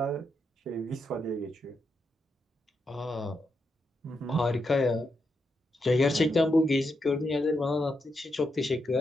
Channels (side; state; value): both; normal; correlation 0.83